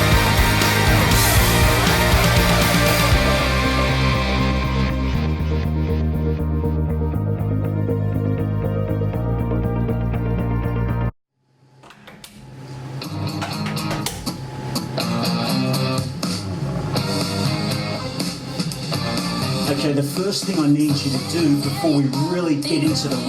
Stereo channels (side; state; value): both; identical; correlation 1.00